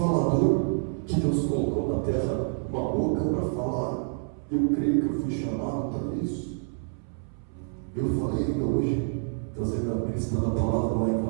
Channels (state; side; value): silent; left; 60 dB below the other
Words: que Deus colocou na terra uma boca para falar, eu creio que eu fui chamado para isso. Eu falei ainda hoje, ministrando a palavra lá em